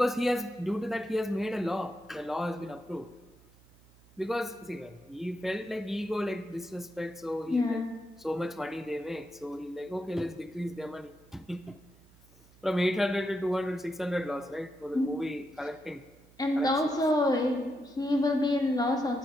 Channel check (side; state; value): right; noise; hum, 27 dB below the sound